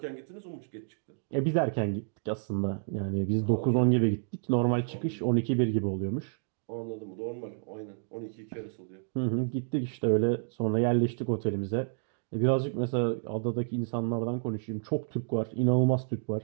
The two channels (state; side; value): silent; left; digital silence